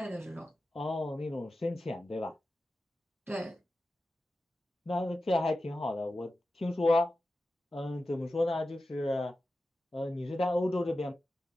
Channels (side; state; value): both; normal; correlation 0.93